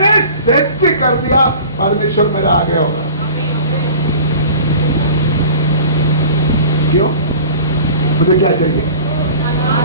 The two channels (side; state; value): both; inverted; correlation -0.41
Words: सत्य कर दिया, परमेश्वर मेरा आगे होगा। क्यों? मुझे क्या चाहिए?